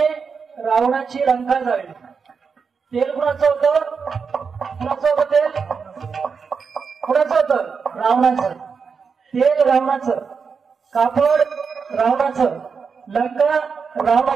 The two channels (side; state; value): left; quieter; 5.6 dB